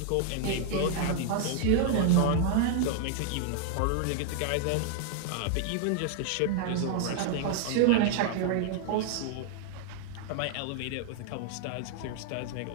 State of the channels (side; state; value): both; different; correlation 0.00